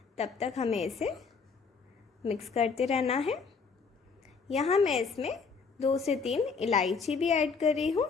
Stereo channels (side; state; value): right; quieter; 5.2 dB